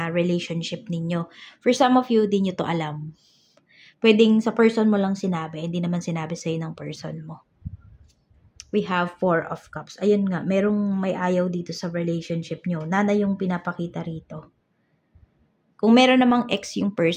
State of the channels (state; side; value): identical; both; correlation 1.00